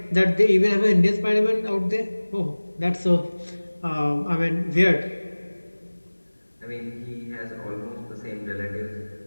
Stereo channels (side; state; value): both; inverted; correlation -1.00